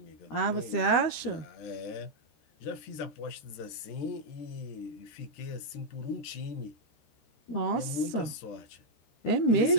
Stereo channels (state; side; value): late; right; 13 ms